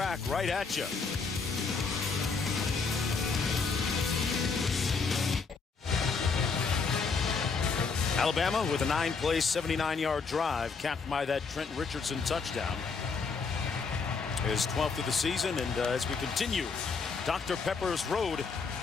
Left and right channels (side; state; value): right; quieter; 4.9 dB